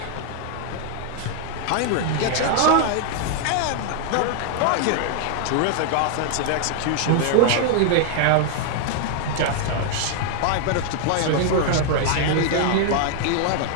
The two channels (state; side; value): different; both; correlation 0.00